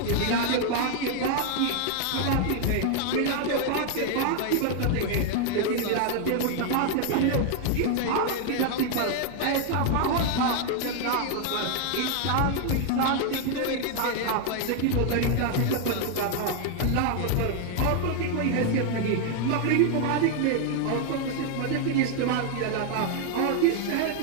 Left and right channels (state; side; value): different; both; correlation 0.00